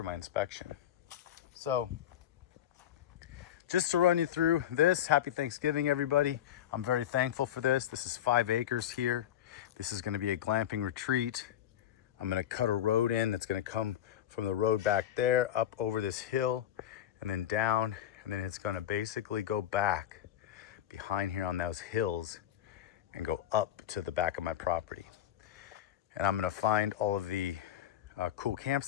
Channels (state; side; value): quieter; right; 11.1 dB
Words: my inspection. So just to run you through this, happy Thanksgiving, everybody. I'm very thankful for this. This is 5 acres here. This is going to be a glamping retreat. I'm going to cut a road in that's going to come from the road back there up over this hill and then down, and then it's going to basically go back behind here on those hills and go up to the back of my property. And I'm going to find all of the cool